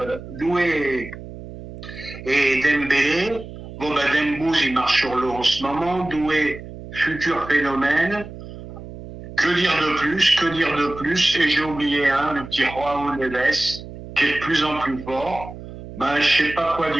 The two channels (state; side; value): noise; right; hum, 13 dB below the sound